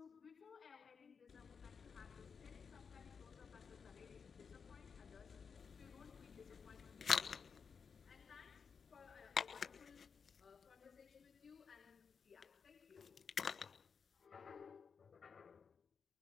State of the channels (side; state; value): right; quieter; 6.0 dB